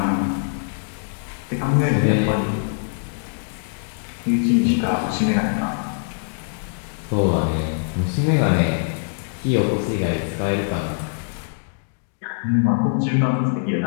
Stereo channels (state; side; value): silent; right; digital silence